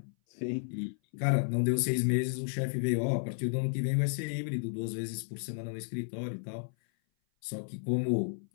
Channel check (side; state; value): right; silent; 56 dB below the other